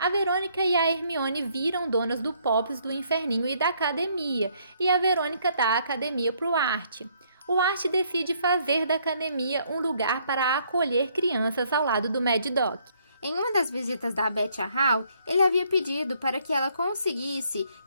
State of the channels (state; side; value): inverted; both; correlation -0.68